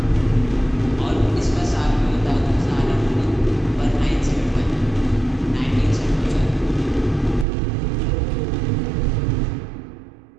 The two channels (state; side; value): drops out; left; at 7.5 s